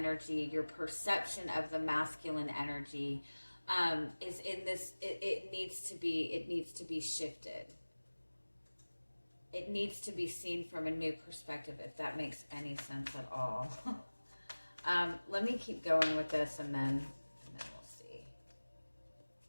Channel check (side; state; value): both; inverted; correlation -1.00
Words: your perception of the masculine energy, is in this. It needs to be shifted. It needs to be seen from a new perspective, if that makes any sense at all. Let me keep going with this, and then we'll see.